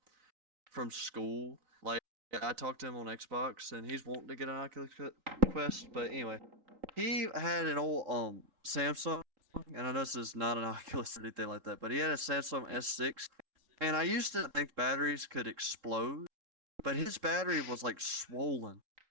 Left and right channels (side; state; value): left; late; 3.7 ms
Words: from school, like I talked to him on Xbox, and he's wanting to get an Oculus Quest. But anyway, he had an old Samsung, and I know this is not an Oculus or anything like that, but he had a Samsung S6, and I used to think batteries could explode, but his battery was like swollen,